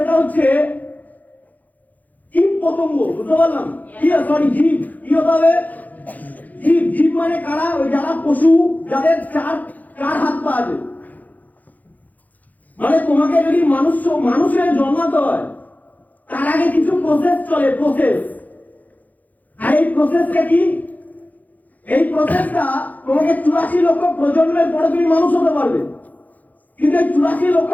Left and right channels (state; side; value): late; right; 0.080 ms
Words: হচ্ছে জীব পতঙ্গ। বুঝতে পারলাম? সরি, জীব। কি হতে হবে? জীব। জীব মানে কারা? ওই যারা পশু, যাদের চার হাত পা আছে। মানে তোমাকে যদি মানুষের জন্মাতে হয় তার আগে কিছু প্রসেস চলে, প্রসেস। আর এই প্রসেসটা কি? এই প্রসেসটা তোমাকে 84 লক্ষ প্রজন্মের পরে তুমি মানুষ হতে পারবে, কিন্তু এই 84 লক্ষ